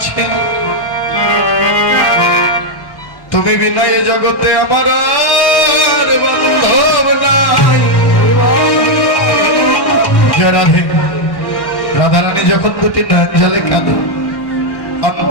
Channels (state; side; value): late; right; 1.1 ms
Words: তুমি বিনা এ জগতে আমার আর বান্ধব নাই জয় রাধে রাধারানী যখন দুটি নয়ন জলে কাঁদে